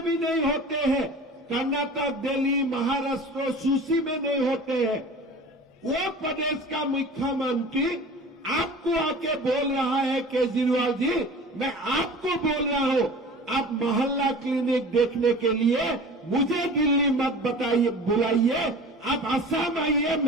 भी नहीं होते हैं, कर्नाटक, दिल्ली, महाराष्ट्र सूची में नहीं होते हैं, वो प्रदेश का मुख्यमंत्री आपको आके बोल रहा है, केजरीवाल जी, मैं आपको बोल रहा हूं, आप मोहल्ला क्लिनिक देखने के लिए मुझे दिल्ली मत बताइए, बुलाइए, आप असम आइए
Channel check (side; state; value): both; normal; correlation 0.39